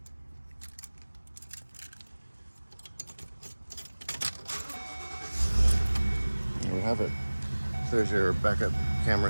There we have it. So there's your backup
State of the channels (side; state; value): both; inverted; correlation -1.00